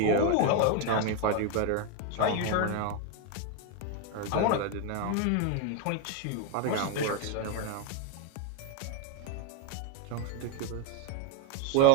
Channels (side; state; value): both; different; correlation 0.01